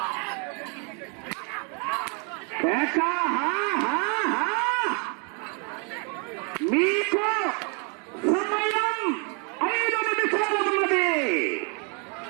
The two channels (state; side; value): quieter; left; 35.9 dB